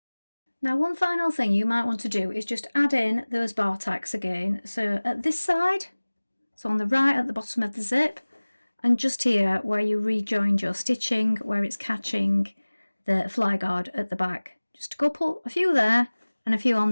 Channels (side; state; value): both; inverted; correlation -1.00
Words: Now, one final thing you might want to do is just add in those bar tacks again. So at this side, so on the right at the bottom of the zip, and just here where you rejoined your stitching, where it's catching the fly guard at the back. Just a few there and a few on